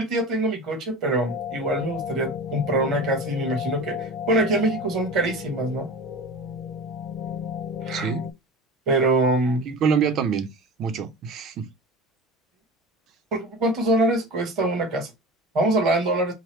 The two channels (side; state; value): both; normal; correlation 0.32